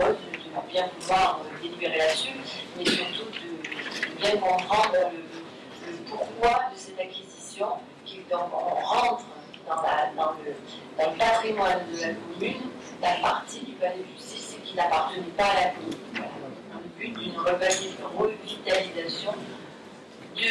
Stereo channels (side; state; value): both; identical; correlation 1.00